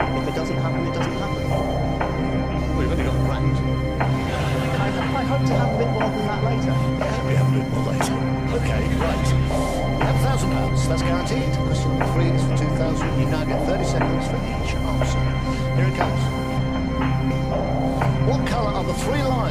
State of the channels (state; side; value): identical; both; correlation 1.00